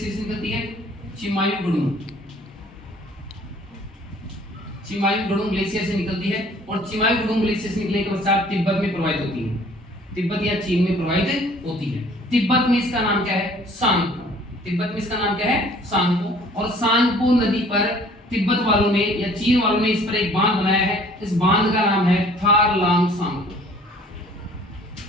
से निकलती है? चिमायुगुडुंग ग्लेशियर से निकलती है और चिमायुगुडुंग ग्लेशियर से निकलने के पश्चात तिब्बत में प्रवाहित होती है। तिब्बत या चीन में प्रवाहित होती है। तिब्बत में इसका नाम क्या है? सांगपो। तिब्बत में इसका नाम क्या है? सांगपो। और सांगपो नदी पर तिब्बत वालों ने या चीन वालों ने इस पर एक बांध बनाया है। इस बांध का नाम है थारलांग सांगपो।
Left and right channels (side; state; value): both; normal; correlation 0.54